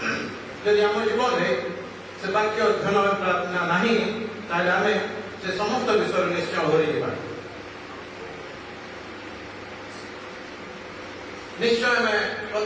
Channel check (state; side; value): identical; both; correlation 1.00